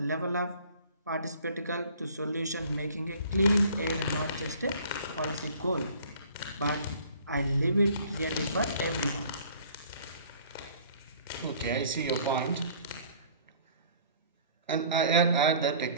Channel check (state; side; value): inverted; both; correlation -0.52